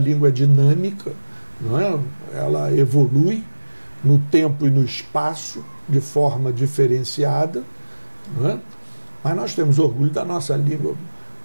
é dinâmica, não é? Ela evolui no tempo e no espaço de forma diferenciada, não é? Mas nós temos orgulho da nossa língua,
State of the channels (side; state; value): both; inverted; correlation -1.00